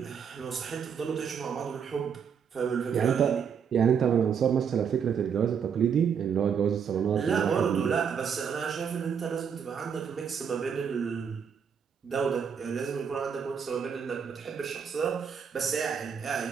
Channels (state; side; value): quieter; left; 7.2 dB